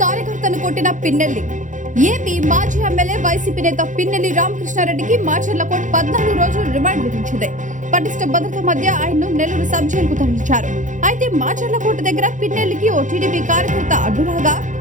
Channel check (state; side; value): late; left; 0.36 ms